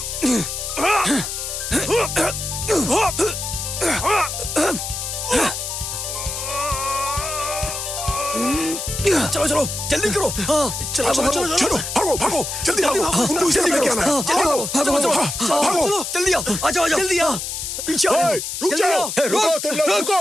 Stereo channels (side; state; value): left; noise; hiss, 5 dB below the sound